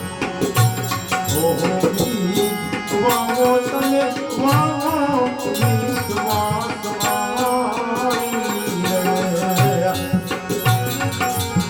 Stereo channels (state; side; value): identical; both; correlation 1.00